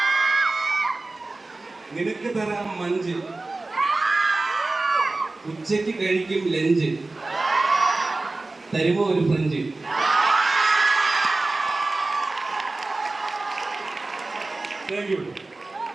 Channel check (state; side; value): quieter; left; 3.2 dB